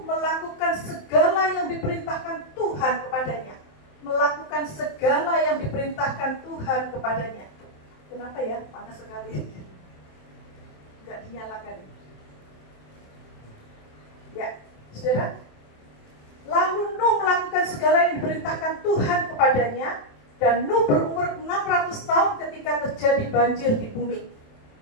melakukan segala yang diperintahkan Tuhan kepadanya. Melakukan segala yang diperintahkan Tuhan kepadanya. Kenapa ya? Panas sekali. Enggak dinyalakan. Ya, saudara. Lalu Nuh melakukan segala yang diperintahkan Tuhan kepadanya, dan Nuh berumur 600 tahun ketika terjadi banjir di bumi.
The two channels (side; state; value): right; late; 27 ms